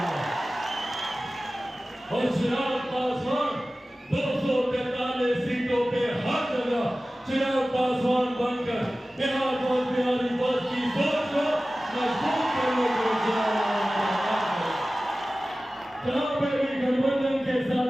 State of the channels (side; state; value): both; normal; correlation 0.96